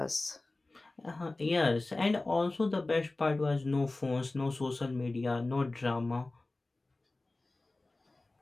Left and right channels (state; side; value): quieter; right; 3.0 dB